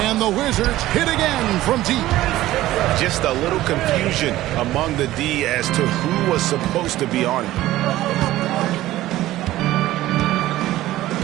And the Wizards hit again from deep. Just a little confusion among the D as to who was supposed to be on it.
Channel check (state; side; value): quieter; left; 15.5 dB